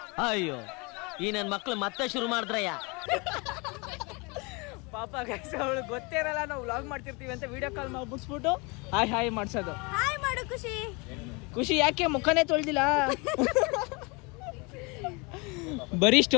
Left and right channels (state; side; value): quieter; right; 29.0 dB